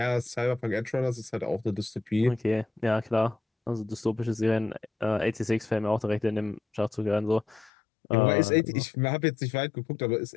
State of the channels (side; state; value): right; drops out; at 7.7 s